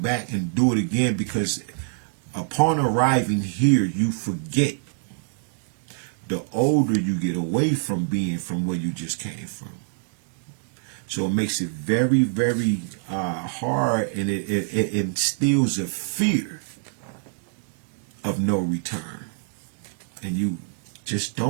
and do it again because upon arriving here, you forget. The older you get away from being from where you just came from. So it makes it very, very hard, and it instills a fear of no return. And you just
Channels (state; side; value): silent; left; digital silence